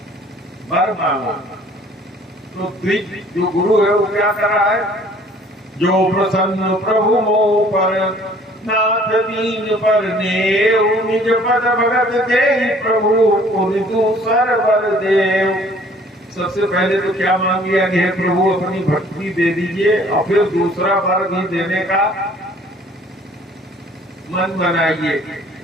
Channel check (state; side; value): normal; both; correlation 0.55